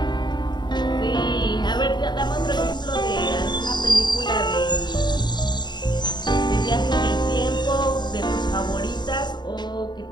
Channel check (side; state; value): right; late; 0.21 ms